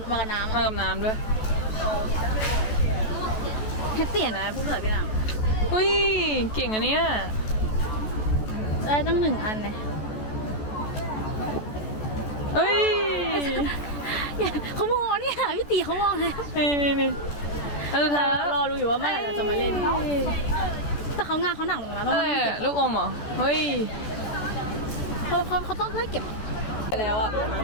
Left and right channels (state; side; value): late; right; 14 ms